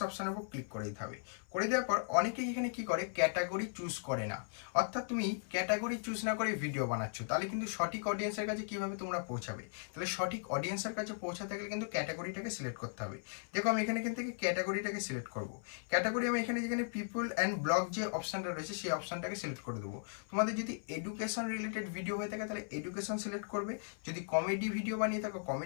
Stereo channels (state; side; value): silent; right; 53 dB below the other